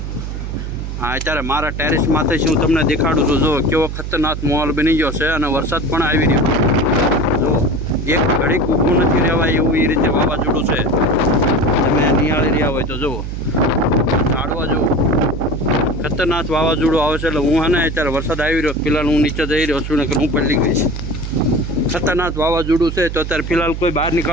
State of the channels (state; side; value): noise; right; hum, 6 dB below the sound